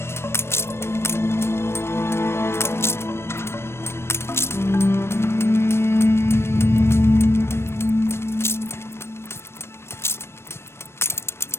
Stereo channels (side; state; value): right; late; 0.12 ms